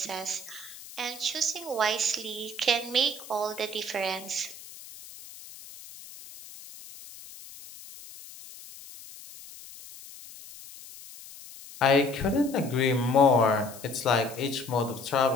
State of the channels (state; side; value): noise; left; hiss, 17 dB below the sound